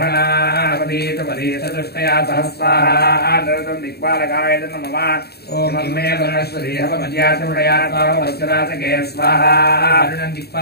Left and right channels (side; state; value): right; late; 0.47 ms